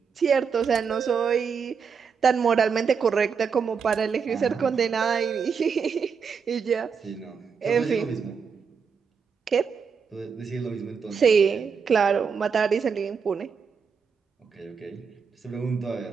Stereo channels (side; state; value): left; quieter; 6.1 dB